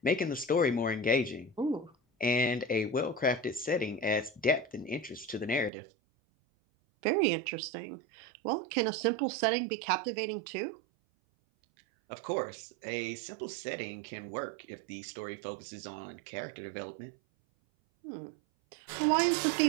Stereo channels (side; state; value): left; drops out; at 5.7 s